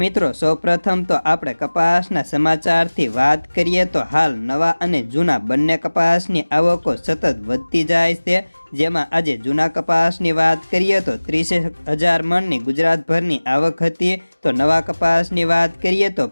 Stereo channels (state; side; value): inverted; both; correlation -1.00